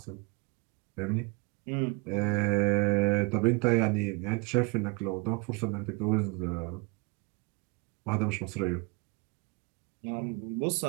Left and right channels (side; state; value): left; quieter; 28.6 dB